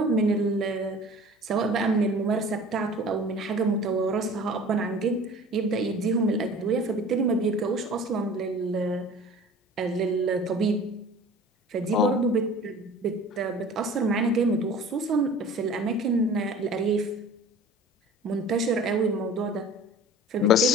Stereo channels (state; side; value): normal; both; correlation 0.43